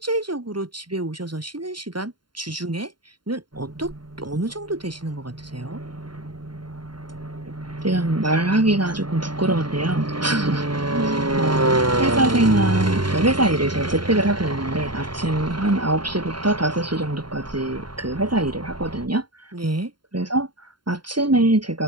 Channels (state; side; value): late; left; 0.72 ms